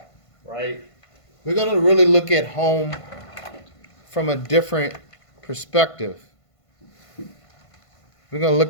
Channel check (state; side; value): late; right; 1.5 ms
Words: right? We're going to really look at home from a different perspective. We're going to